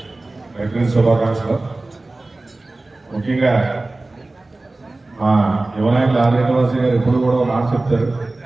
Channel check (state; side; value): quieter; left; 3.0 dB